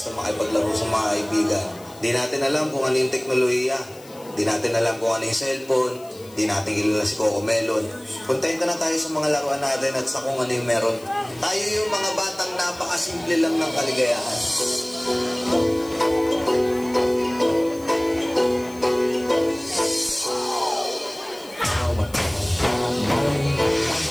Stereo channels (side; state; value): left; noise; hiss, 22 dB below the sound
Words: makipaglaro sa mga kaibigan. Di natin alam kung ano yung teknolohiya. Di natin alam kung ano yung cellphone. Di natin kilala si Coco Melon. Kontento na tayo sa mga laruan natin at sa kung ano yung meron. Tayo yung mga batang napakasimple lang ng kaligayahan.